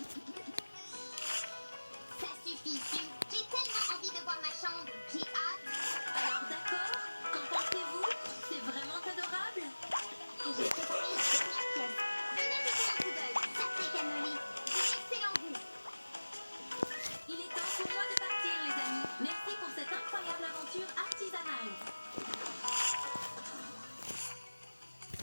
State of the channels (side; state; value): both; inverted; correlation -1.00